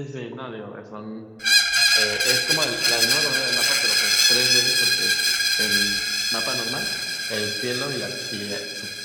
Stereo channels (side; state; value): both; identical; correlation 1.00